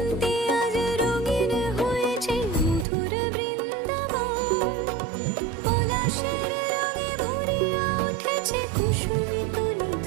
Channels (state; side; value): drops out; left; at 2.9 s